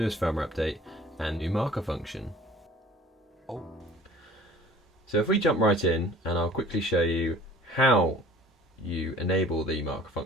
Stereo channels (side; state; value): both; normal; correlation 0.47